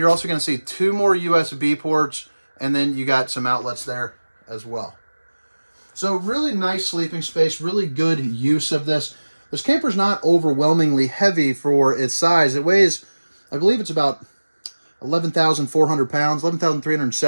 also going to see 2 more USB ports, and then you got some outlets there as well. So really nice sleeping space, really good use of this. This camper's not overwhelmingly heavy for its size. It weighs, I believe it's about 11,400 pounds,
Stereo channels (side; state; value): both; inverted; correlation -1.00